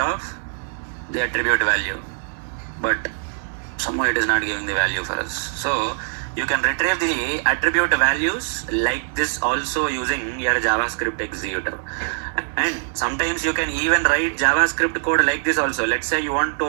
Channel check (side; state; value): left; silent; 64 dB below the other